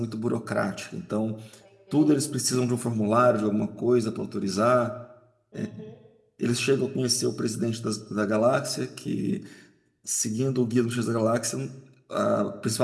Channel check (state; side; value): identical; both; correlation 1.00